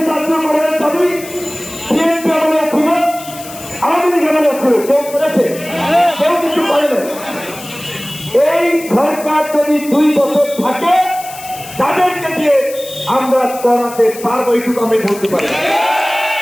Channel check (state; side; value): noise; left; hiss, 15 dB below the sound